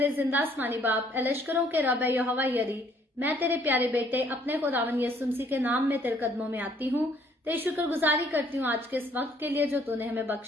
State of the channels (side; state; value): both; normal; correlation 0.63